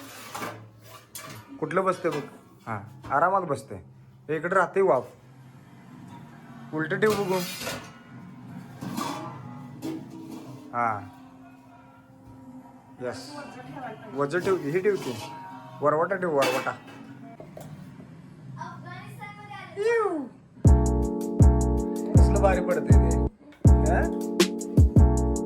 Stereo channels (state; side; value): identical; both; correlation 1.00